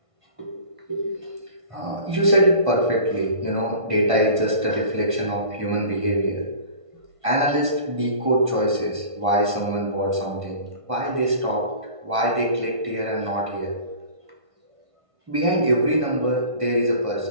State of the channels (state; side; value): late; left; 1.5 ms